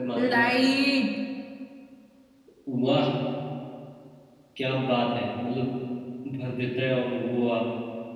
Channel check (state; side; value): identical; both; correlation 1.00